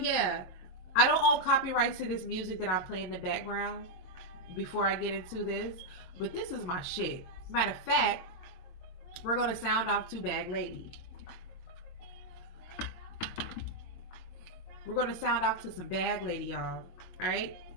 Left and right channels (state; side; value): late; right; 22 ms